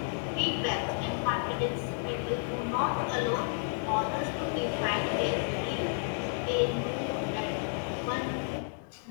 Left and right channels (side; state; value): right; silent; digital silence